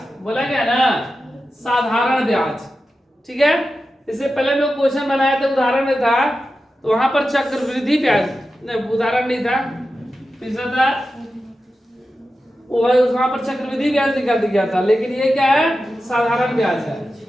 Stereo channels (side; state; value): both; normal; correlation 0.92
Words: बोला गया ना, साधारण ब्याज। ठीक है, इससे पहले हम लोग क्वेश्चन बनाए थे, उदाहरण में था, तो वहां पर चक्रवृद्धि ब्याज नहीं, उदाहरण नहीं था, तीसरा था वहां पर चक्रवृद्धि ब्याज निकाल दिया था। लेकिन ये क्या है? साधारण ब्याज है।